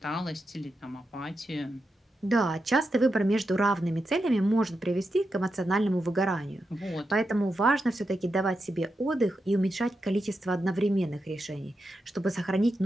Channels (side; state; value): both; normal; correlation 0.87